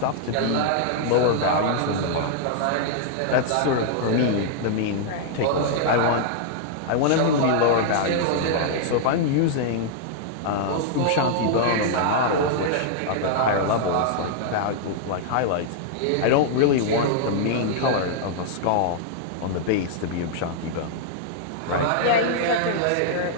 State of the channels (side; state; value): both; different; correlation -0.01